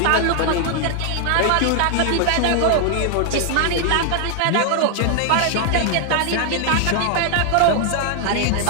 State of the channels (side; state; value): both; different; correlation 0.00